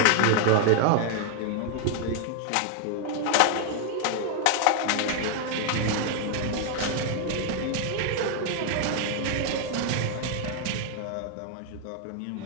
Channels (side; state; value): both; different; correlation 0.00